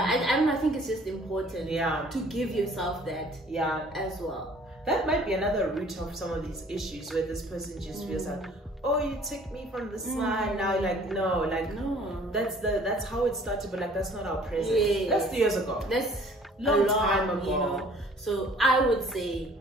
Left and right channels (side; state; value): both; normal; correlation 0.54